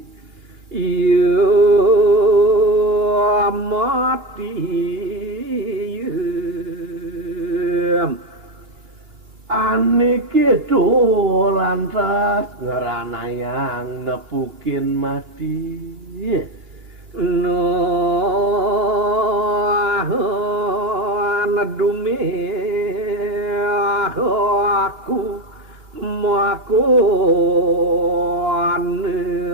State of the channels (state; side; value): late; left; 2.3 ms